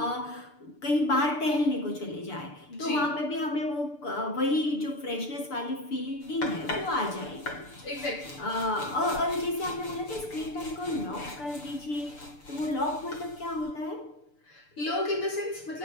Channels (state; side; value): late; right; 6.8 ms